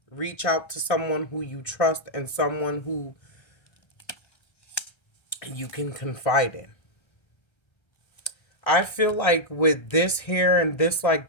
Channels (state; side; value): late; right; 1.3 ms